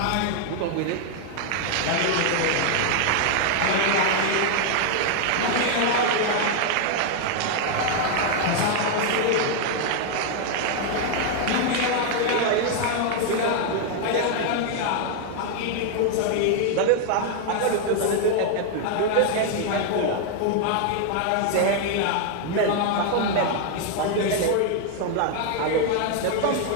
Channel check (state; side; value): different; both; correlation 0.00